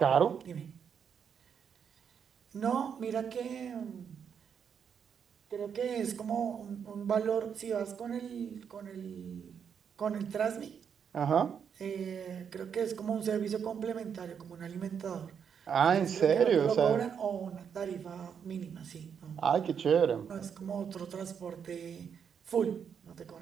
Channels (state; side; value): quieter; left; 7.4 dB